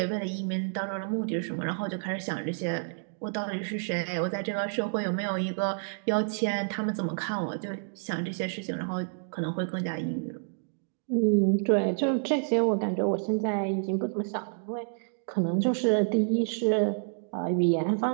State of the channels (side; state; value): left; silent; digital silence